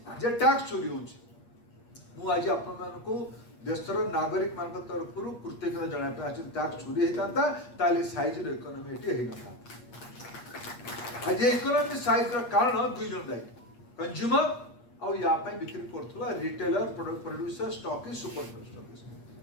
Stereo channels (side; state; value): right; late; 8.5 ms